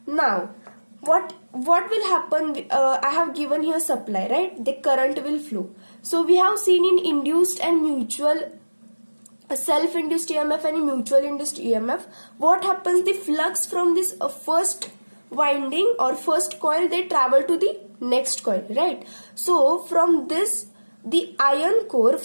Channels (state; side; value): inverted; both; correlation -1.00